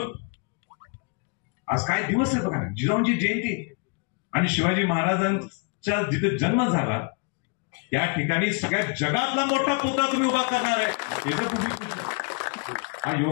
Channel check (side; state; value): right; quieter; 34.4 dB